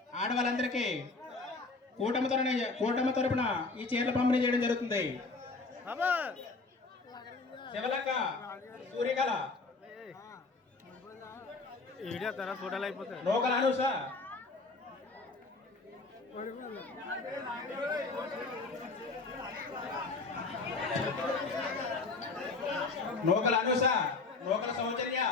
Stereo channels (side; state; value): right; quieter; 3.8 dB